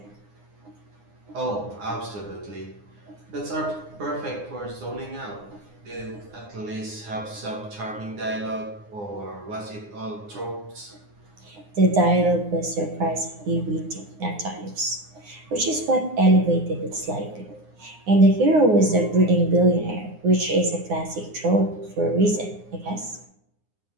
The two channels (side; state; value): left; late; 9.7 ms